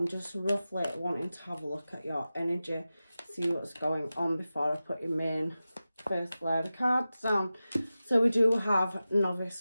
just roughly wanting to have a look at your energy, see what's going on before I put your main first layer of cards down. So we do have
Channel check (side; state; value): both; inverted; correlation -0.94